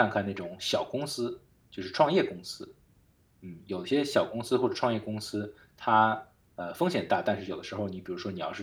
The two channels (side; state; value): both; identical; correlation 1.00